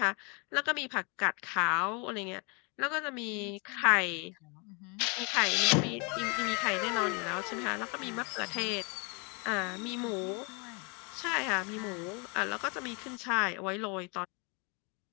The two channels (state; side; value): quieter; right; 32.6 dB